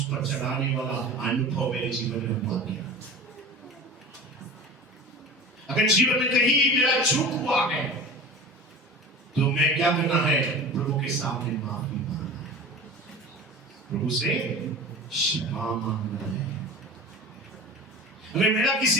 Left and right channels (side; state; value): both; normal; correlation 0.35